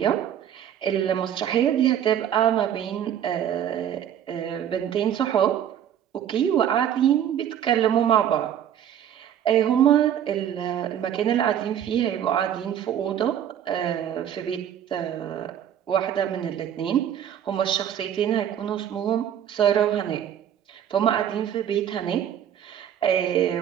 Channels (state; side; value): quieter; left; 9.8 dB